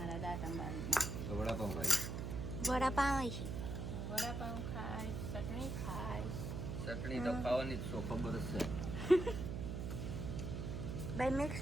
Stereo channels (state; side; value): noise; right; hum, 4 dB below the sound